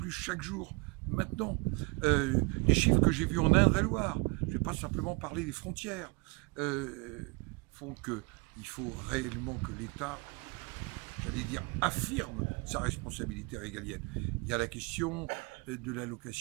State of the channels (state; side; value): quieter; left; 26.9 dB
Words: chaque jour, maintenant. Les chiffres que j'ai vus en Indre-et-Loire, je ne vais pas simplement parler des frontières, font qu'il faut réellement que l'État, j'allais dire, affirme sa responsabilité régalienne. Il y a la question de